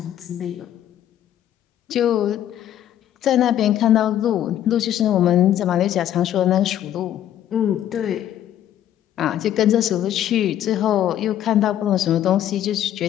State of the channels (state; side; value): quieter; right; 11.3 dB